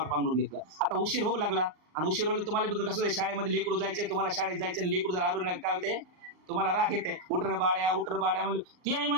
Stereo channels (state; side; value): late; left; 39 ms